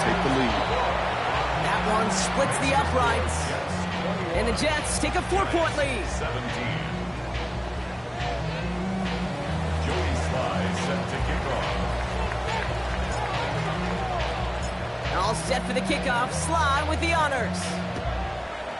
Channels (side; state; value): both; identical; correlation 1.00